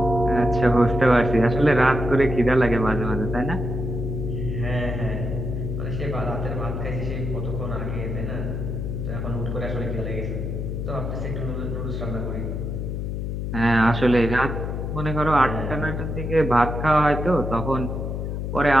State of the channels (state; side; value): noise; left; hum, 3 dB below the sound